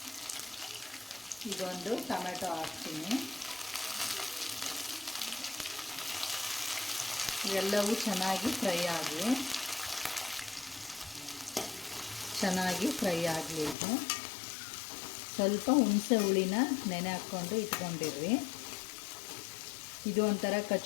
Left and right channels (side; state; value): right; drops out; at 13.8 s